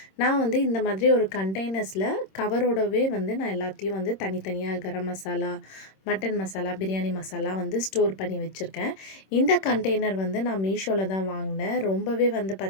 நான் வந்து இந்த மாதிரி ஒரு கண்டெய்னர்ஸில் கவரோடவே வந்து நான் எல்லாத்தையும் வந்து தனித்தனியாக கரம் மசாலா, மட்டன் மசாலா, பிரியாணி மசாலா வந்து ஸ்டோர் பண்ணி வச்சுருக்கேன். இந்த கண்டெய்னர் வந்து நான் மீஷோவில் தான் வாங்கினேன். ரொம்பவே வந்து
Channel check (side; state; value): right; late; 26 ms